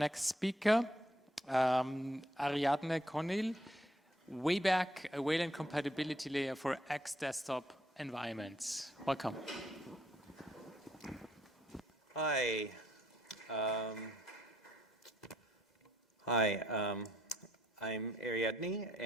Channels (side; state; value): both; normal; correlation 0.71